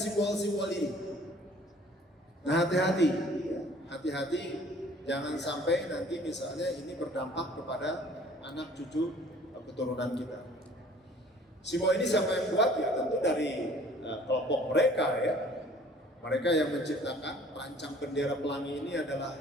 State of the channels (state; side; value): normal; both; correlation 0.53